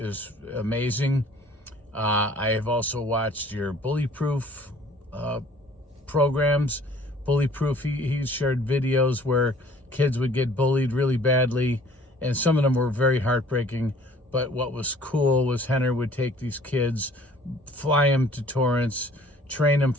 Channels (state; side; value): normal; both; correlation 0.53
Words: amazing. I have also watched your bully-proof programs. Bully-proof, he shared videos where kids would get bullied really badly, and some of them were very heartbreaking. But what was cool was Henner would take these kids, fly them to Torrance, train them